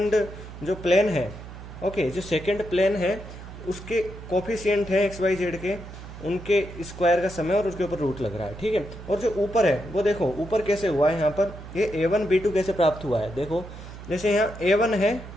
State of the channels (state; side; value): noise; right; hum, 13 dB below the sound